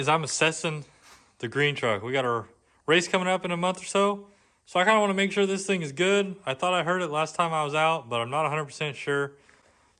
I'm assessing the green truck. We got our race coming up in a month or so. So I kind of want to make sure this thing is good. I thought I heard it last time I was out, but I'm not 100% sure.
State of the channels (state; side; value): identical; both; correlation 1.00